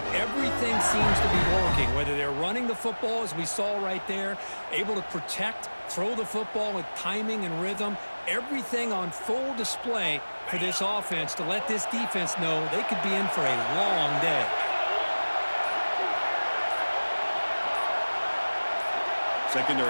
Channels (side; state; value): both; inverted; correlation -1.00